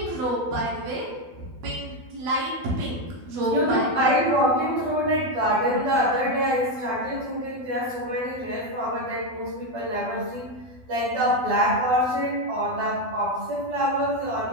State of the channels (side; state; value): left; late; 12 ms